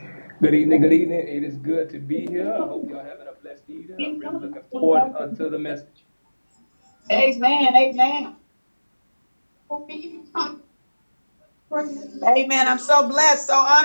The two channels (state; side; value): inverted; both; correlation -1.00